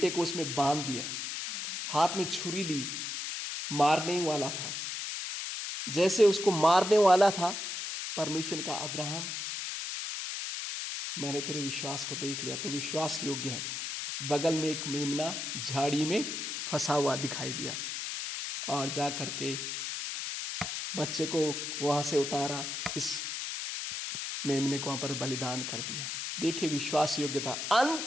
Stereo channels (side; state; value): left; noise; hiss, 4 dB below the sound